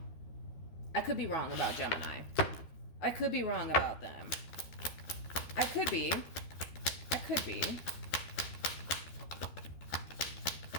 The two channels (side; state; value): right; late; 12 ms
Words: I could be wrong about Gemini. I could be wrong about them. I could be.